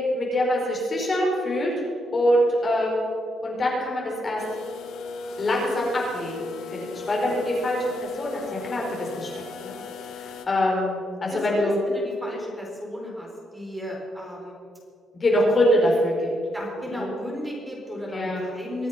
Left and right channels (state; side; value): normal; both; correlation 0.78